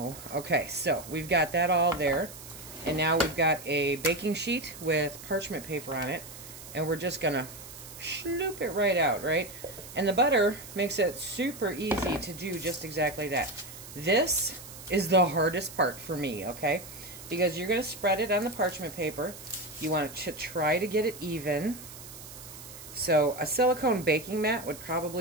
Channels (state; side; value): noise; right; hiss, 15 dB below the sound